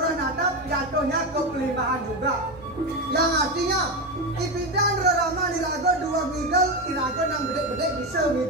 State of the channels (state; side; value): normal; both; correlation 0.14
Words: atap jatuhnya ke pelimpahan juga. Yang artinya ipidan rorama nirago dua migel, irago nang bedek-bedek bisa